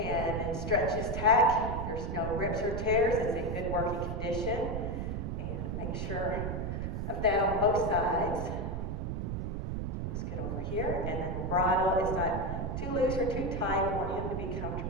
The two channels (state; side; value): noise; right; rumble, 2 dB below the sound